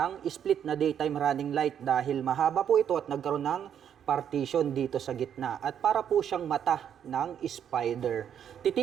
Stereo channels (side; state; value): left; quieter; 9.0 dB